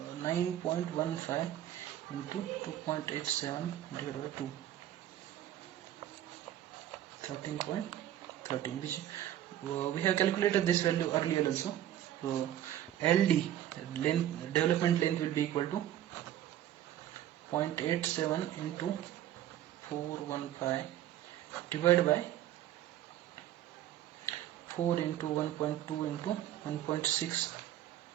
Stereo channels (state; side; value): quieter; left; 12.1 dB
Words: 9.15 into 2.87 divided by 2, 13.13, which we have calculated this value earlier also. So LD development length will be equal to 0.87 into 415 divided by 4 into 1.2 into 1.6.